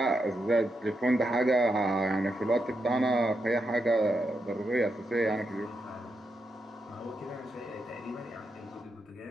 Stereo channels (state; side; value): normal; both; correlation 0.84